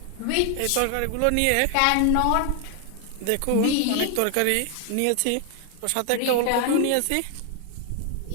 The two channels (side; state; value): both; different; correlation 0.00